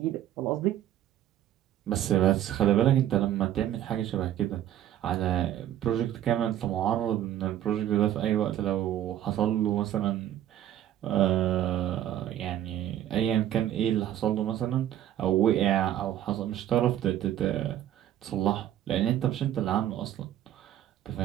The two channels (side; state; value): left; quieter; 11.8 dB